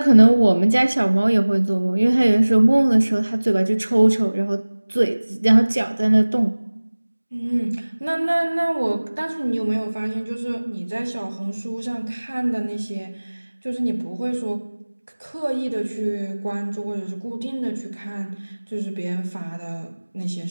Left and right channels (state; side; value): inverted; both; correlation -1.00